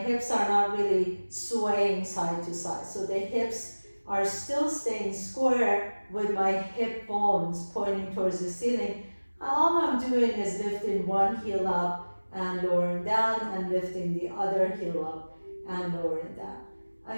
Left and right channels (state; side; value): inverted; both; correlation -1.00